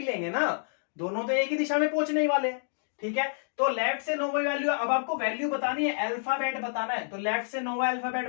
लेंगे ना, दोनों तो एक ही दिशा में पहुंचने ही वाले हैं, ठीक है। तो लेफ्ट से 9वां वैल्यू, अब आपको वैल्यू बतानी है, अल्फाबेट बताना है, तो लेफ्ट से 9वां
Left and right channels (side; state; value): right; silent; digital silence